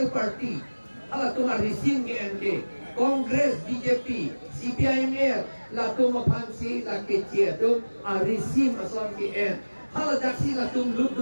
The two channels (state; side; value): inverted; both; correlation -1.00